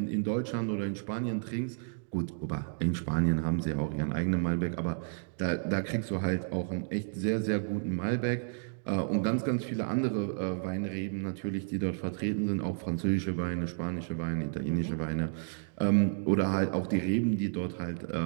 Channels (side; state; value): left; silent; digital silence